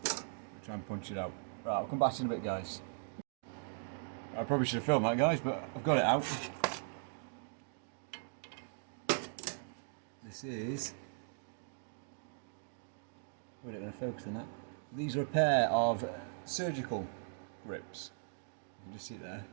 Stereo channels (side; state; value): left; silent; digital silence